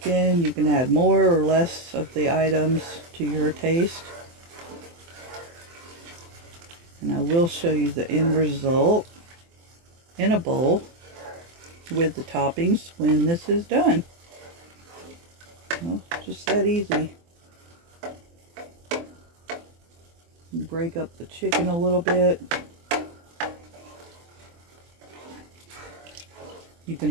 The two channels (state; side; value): late; left; 24 ms